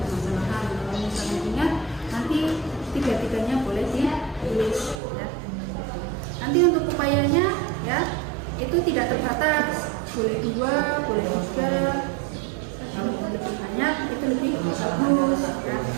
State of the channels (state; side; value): drops out; left; at 5.0 s